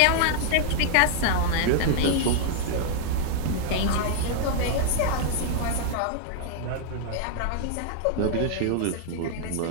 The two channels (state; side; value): different; both; correlation 0.00